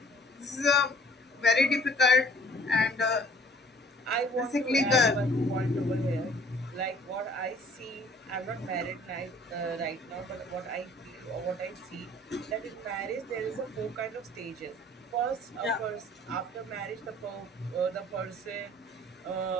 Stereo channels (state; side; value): normal; both; correlation 0.54